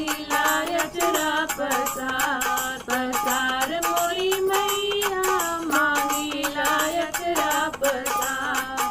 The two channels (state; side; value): identical; both; correlation 1.00